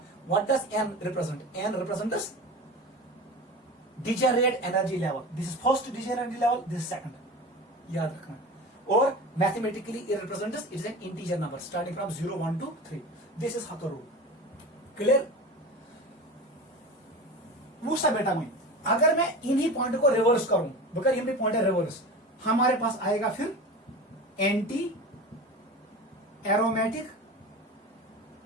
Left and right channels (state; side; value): normal; both; correlation 0.31